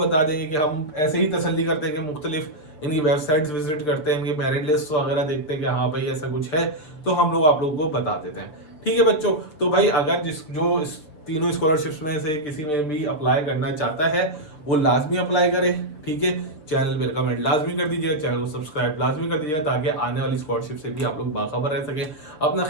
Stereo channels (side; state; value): right; late; 7.0 ms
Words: देंगे कि हम ऐसे ही तसल्ली करते हैं कि मुख्तलिफ इनकी वेबसाइट्स विजिट करते हैं, इनकी मेरिट लिस्ट वगैरह देखते हैं कि हाँ भाई ऐसा कुछ है, तो हम लोग आप लोगों को बता देते हैं। ठीक है बच्चों, तो भाई अगर जो इस तीनों स्कॉलरशिप्स में से किसी में भी अप्लाई करना चाहता है वो लाजमी अप्लाई करे। ठीक है, चैनल पे कमेंट लाजमी कर दीजिएगा, चैनल को सब्सक्राइब लाजमी कर दीजिएगा ताकि आने वाली स्कॉलरशिप से भी आप लोग बाखबर रह सकें। अपना